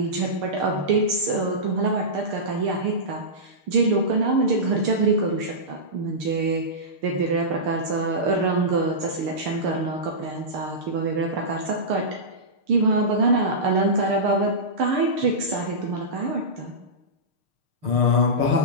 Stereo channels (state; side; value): late; left; 6.6 ms